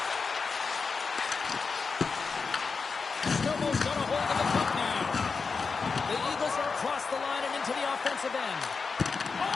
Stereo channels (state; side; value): quieter; right; 4.9 dB